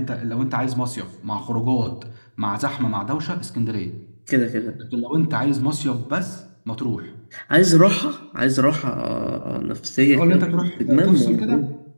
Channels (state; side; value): inverted; both; correlation -1.00